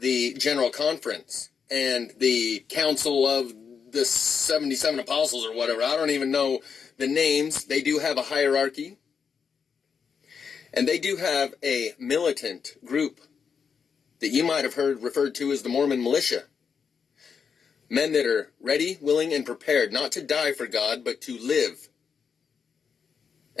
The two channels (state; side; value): quieter; right; 6.3 dB